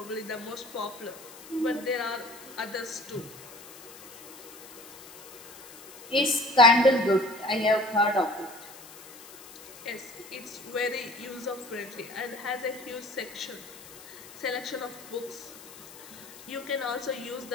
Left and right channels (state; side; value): noise; left; hiss, 17 dB below the sound